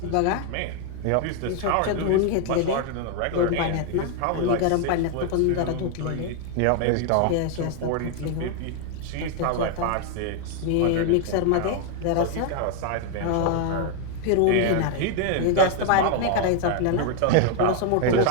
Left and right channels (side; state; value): both; different; correlation 0.00